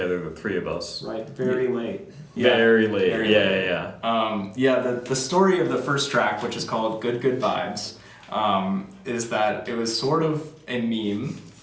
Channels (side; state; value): both; identical; correlation 1.00